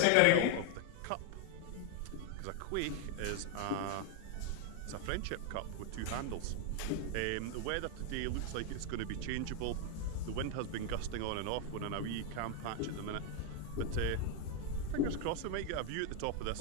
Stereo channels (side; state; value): both; different; correlation 0.01